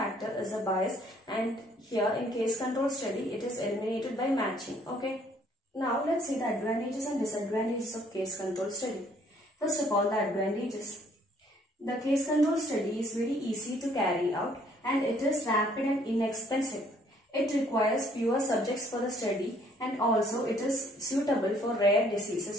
is a bias, and here in case control study it is eliminated by matching. Okay. Now let's see the advantages and disadvantages of case control study. First of all, the advantages. The case control study is very easy to carry out and it is rapid and inexpensive. It requires fewer subjects for the study and also it is suitable for rare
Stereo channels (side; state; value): both; normal; correlation 0.62